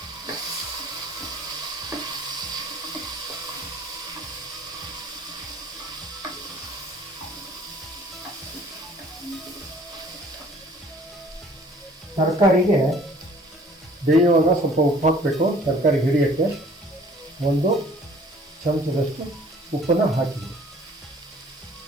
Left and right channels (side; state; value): both; normal; correlation 0.54